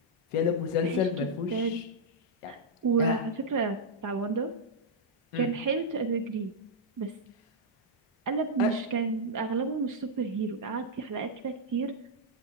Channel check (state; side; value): normal; both; correlation -0.05